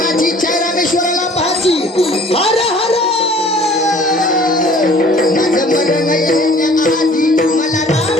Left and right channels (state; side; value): normal; both; correlation 0.52